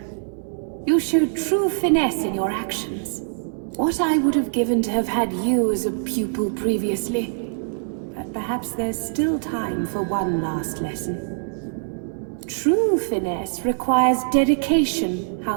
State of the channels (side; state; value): left; silent; digital silence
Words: You showed true finesse in your actions. What I would have given to have had you as a pupil previously. But perhaps there's still time for one last lesson. True finesse requires dedication,